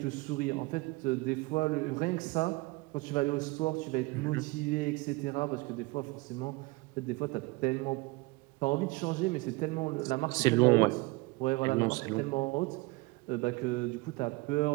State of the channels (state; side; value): quieter; left; 23.8 dB